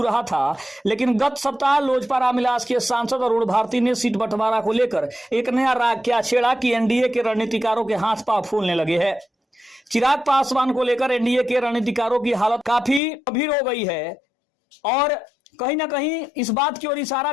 रहा था, लेकिन गत सप्ताह लोजपा रामविलास के सांसद अरुण भारती ने सीट बंटवारा को लेकर एक नया राग क्या छेड़ा कि एनडीए के रणनीतिकारों के हाथ पांव फूलने लगे हैं। चिराग पासवान को लेकर एनडीए के रणनीतिकारों की हालत काफी गंभीर हो गई है और कहीं ना कहीं इस बात की ओर इशारा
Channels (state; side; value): drops out; right; at 13.0 s